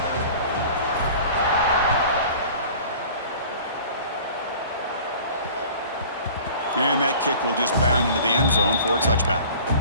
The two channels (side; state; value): both; inverted; correlation -0.45